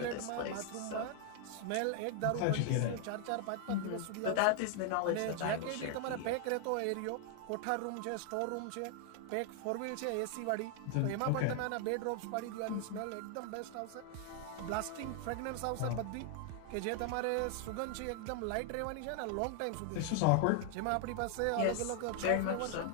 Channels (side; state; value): both; different; correlation 0.00